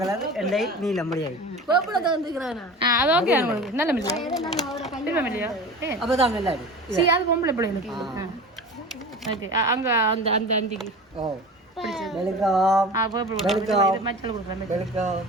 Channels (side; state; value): both; normal; correlation 0.34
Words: அது ஓகே நல்ல மில்லியா சரி அது பொம்பளை பிள்ளைங்களுக்கு ஓகே அங்க அந்த அந்த அந்திக்கு மச்சல் கொடுக்குறேன்